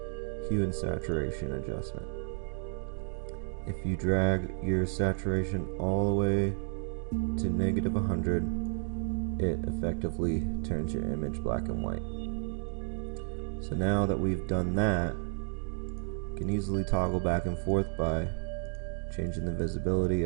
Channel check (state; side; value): silent; left; digital silence